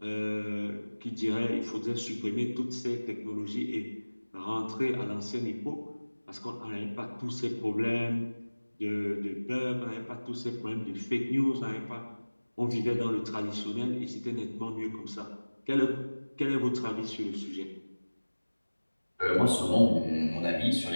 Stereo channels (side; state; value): both; inverted; correlation -1.00